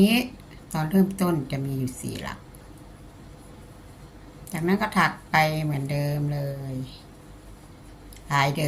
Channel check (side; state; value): both; identical; correlation 1.00